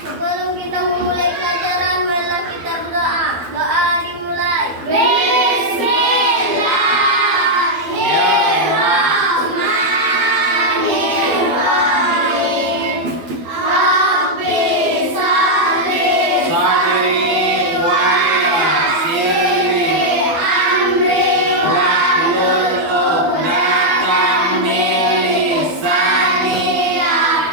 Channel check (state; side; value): late; left; 12 ms